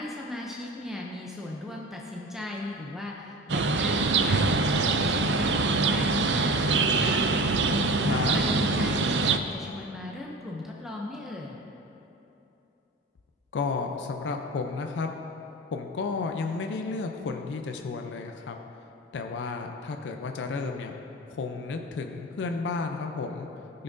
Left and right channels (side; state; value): both; normal; correlation 0.33